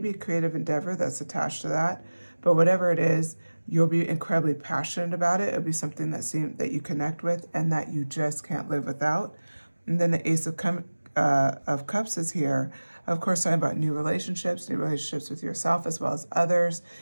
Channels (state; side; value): inverted; both; correlation -1.00